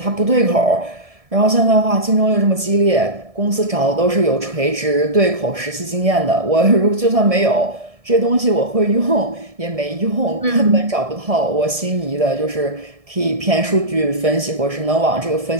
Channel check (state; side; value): late; left; 1.7 ms